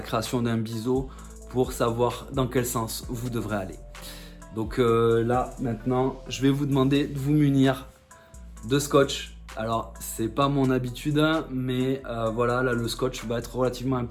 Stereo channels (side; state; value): both; identical; correlation 1.00